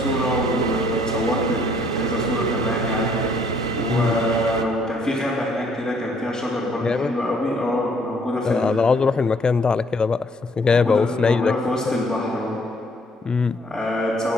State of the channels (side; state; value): both; normal; correlation 0.64